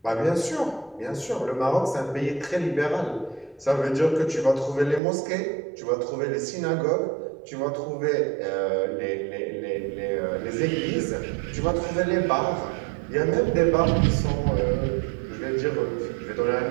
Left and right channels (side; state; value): left; drops out; at 5.0 s